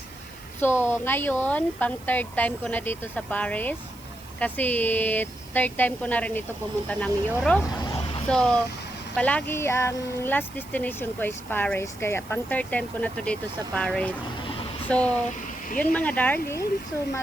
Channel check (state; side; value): noise; right; hiss, 22 dB below the sound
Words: So ngayon, pang third time ko na dito sa Paris. Kasi third time ko na rin ito pumunta ng Europe. So palagi ang last destination ko is Paris. Kaya pang third time ko na to dito sa Paris. So yun mga darling. So